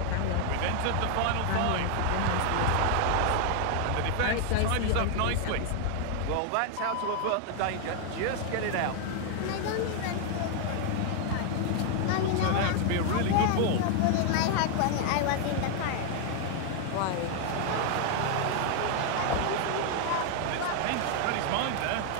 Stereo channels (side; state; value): both; different; correlation 0.00